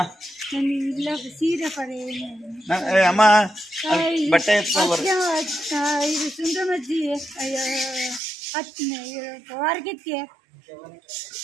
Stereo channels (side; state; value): left; drops out; at 8.2 s